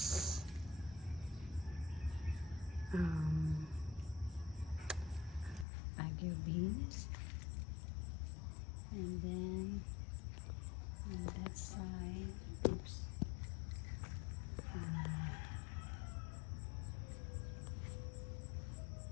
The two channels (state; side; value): drops out; right; at 5.7 s